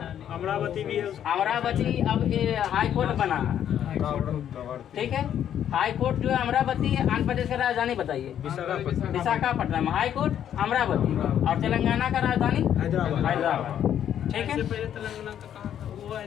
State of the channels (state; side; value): quieter; right; 10.0 dB